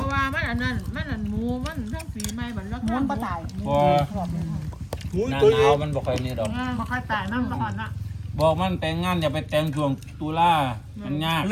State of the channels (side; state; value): both; identical; correlation 1.00